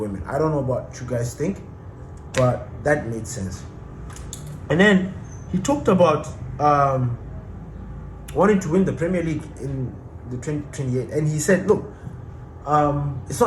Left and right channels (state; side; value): identical; both; correlation 1.00